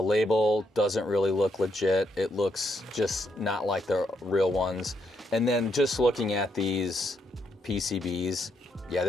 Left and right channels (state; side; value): normal; both; correlation 0.77